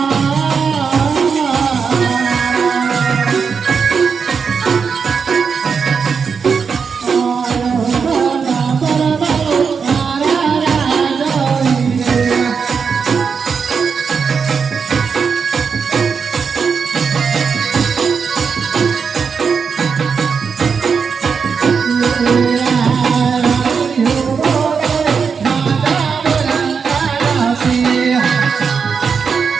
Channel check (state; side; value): quieter; left; 5.9 dB